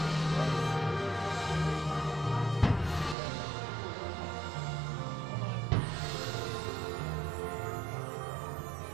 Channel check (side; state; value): left; drops out; at 3.2 s